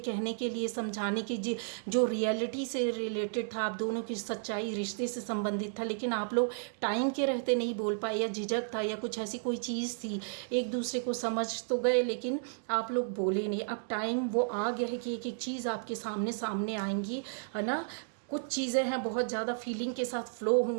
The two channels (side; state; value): left; silent; digital silence